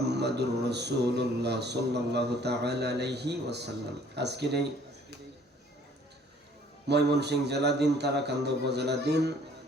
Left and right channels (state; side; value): normal; both; correlation 0.57